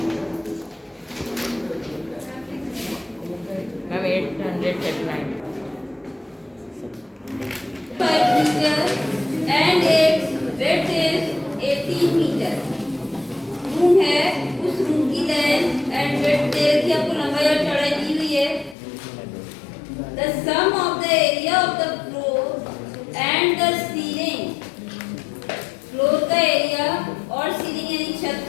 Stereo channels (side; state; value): right; drops out; at 18.8 s